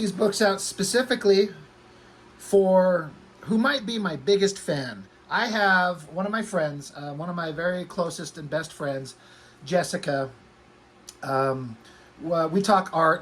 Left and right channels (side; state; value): both; identical; correlation 1.00